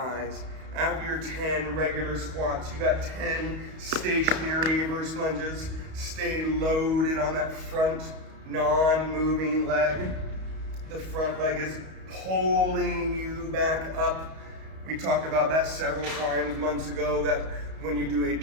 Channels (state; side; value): late; left; 31 ms